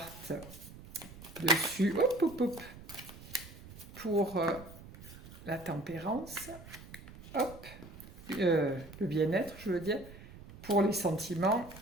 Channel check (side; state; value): right; noise; rumble, 17 dB below the sound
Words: dessus, hop, hop, hop, pour la tempérance, hop, le bien-être, je veux dire, pour les sentiments